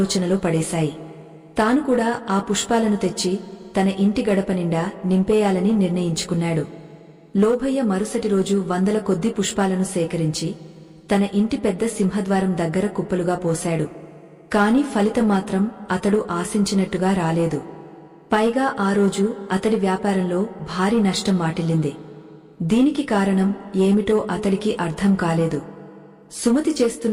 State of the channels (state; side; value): identical; both; correlation 1.00